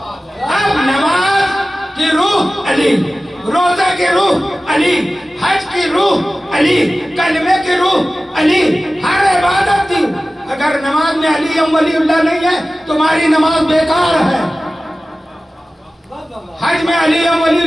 اب نماز کی روح علی، روزہ کی روح علی، حج کی روح علی، کلمے کی روح علی، ہر عبادت کی اگر نماز میں علی ولی اللہ نہیں ہے تمہاری نماز بیکار ہے، حج میں علی ولی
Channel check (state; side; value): normal; both; correlation 0.96